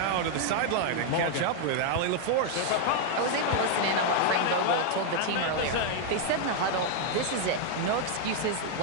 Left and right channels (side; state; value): both; different; correlation 0.00